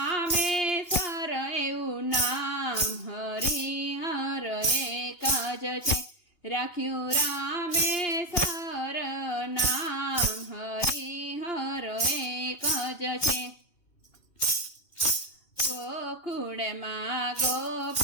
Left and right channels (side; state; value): right; late; 2.9 ms